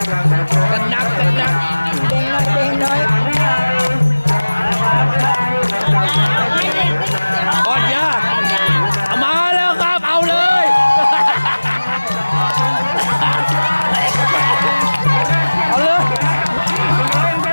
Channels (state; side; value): inverted; both; correlation -1.00